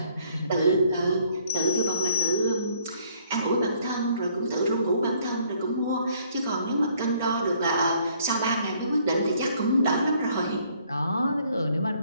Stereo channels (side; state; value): both; inverted; correlation -0.64